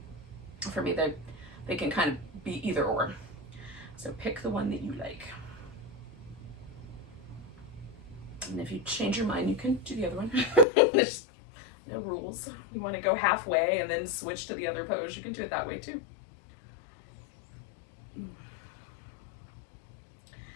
for me, they can kind of be either or. So pick the one that you like. And if you change your mind, you can do the other one. There's no rules. You want to go halfway and then switch to the other pose, you can do it that way too.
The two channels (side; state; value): right; drops out; at 10.7 s